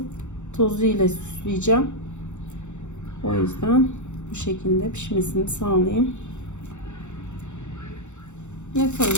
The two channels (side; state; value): right; late; 0.84 ms